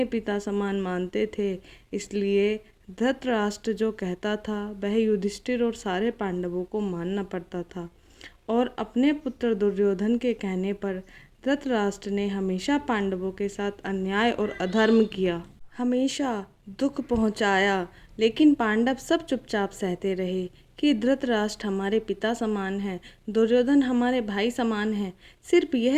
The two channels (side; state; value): both; identical; correlation 1.00